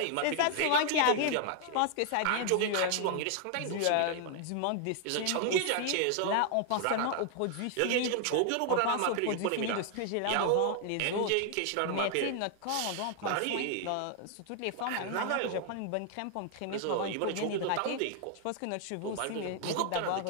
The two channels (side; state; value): both; different; correlation 0.00